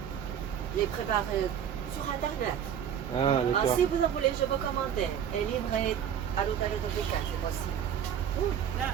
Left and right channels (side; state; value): left; quieter; 9.0 dB